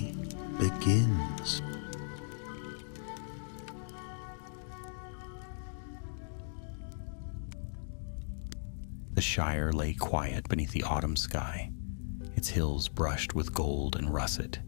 begins. The Shire lay quiet beneath the autumn sky, its hills brushed with gold and russet,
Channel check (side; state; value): right; silent; digital silence